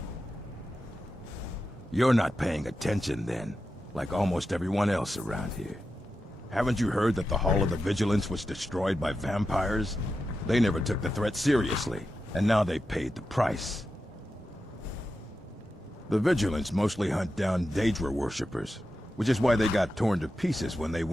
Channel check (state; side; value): normal; both; correlation 0.90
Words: You're not paying attention then, like almost everyone else around here. Haven't you heard that the Hall of the Vigilance was destroyed by vampires? They never took the threat seriously, and now they paid the price. The Vigilance mostly hunt down Daedra worshippers, which is why they got torn to pieces when they